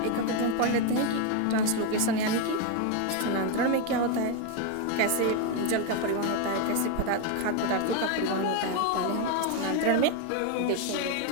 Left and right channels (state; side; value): different; both; correlation 0.01